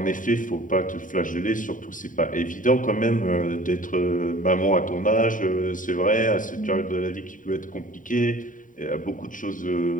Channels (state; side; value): late; right; 0.38 ms